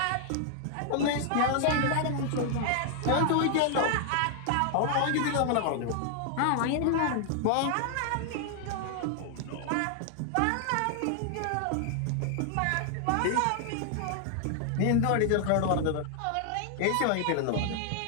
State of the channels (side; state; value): both; different; correlation 0.00